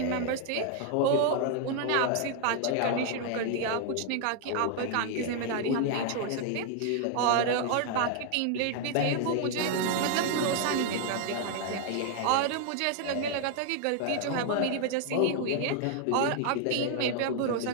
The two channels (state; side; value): different; both; correlation 0.00